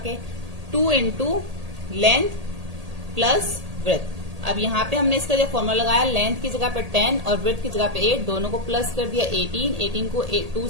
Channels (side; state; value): left; late; 1.8 ms